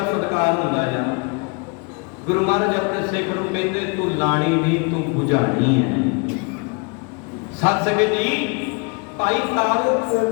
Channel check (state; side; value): quieter; right; 32.4 dB